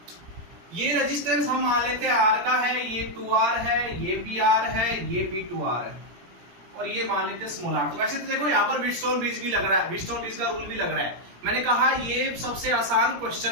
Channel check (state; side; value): late; left; 17 ms